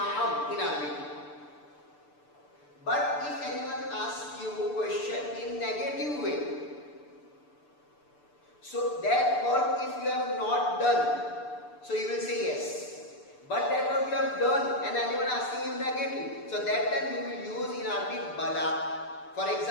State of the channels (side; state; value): right; late; 6.8 ms